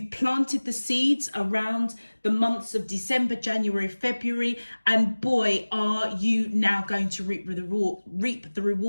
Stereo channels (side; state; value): both; inverted; correlation -1.00